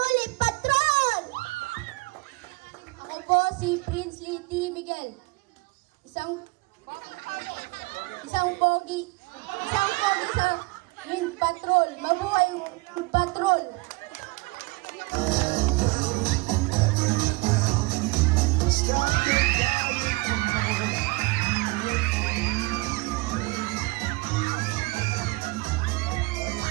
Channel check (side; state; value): left; quieter; 24.5 dB